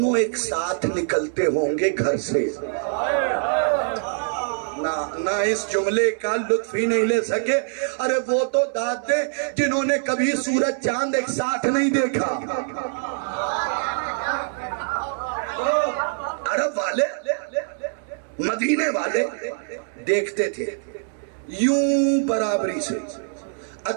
एक साथ निकलते होंगे घर से, ना इस जुमले का लुत्फ ही नहीं ले सके। अरे वो तो दादे जिन्होंने कभी सूरज चांद एक साथ नहीं देखा। अरब वाले, मदीने वाले देखते थे यूं बराबरी से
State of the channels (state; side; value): silent; left; 63 dB below the other